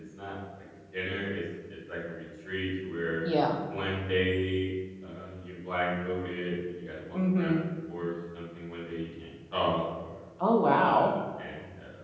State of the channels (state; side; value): identical; both; correlation 1.00